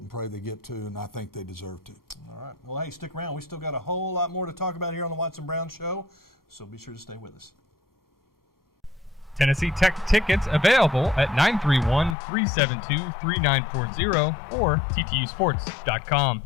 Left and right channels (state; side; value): drops out; right; at 12.2 s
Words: pray they get 2, and I think they deserve to. All right. Well, hey, stick around. We still got a whole lot more to talk about here on the Watson Brown Show, so be sure to stay with us. Tennessee Tech tickets available at 931-372-3940 or ttusports.com.